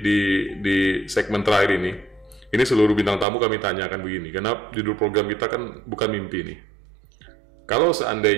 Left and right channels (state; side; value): drops out; left; at 3.2 s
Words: segmen terakhir ini seluruh bintang tamu kami tanyakan begini, karena judul program kita kan bukan mimpi nih. Kalau